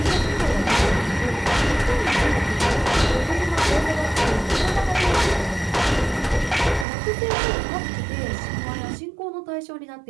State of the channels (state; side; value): drops out; left; at 6.9 s